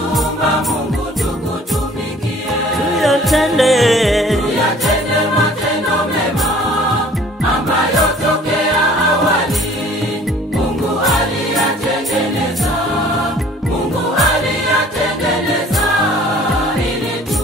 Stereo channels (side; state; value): both; normal; correlation 0.52